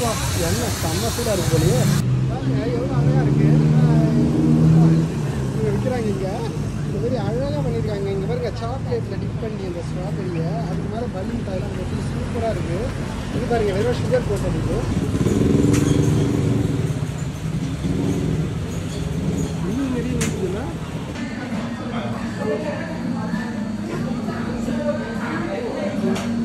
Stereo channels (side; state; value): both; identical; correlation 1.00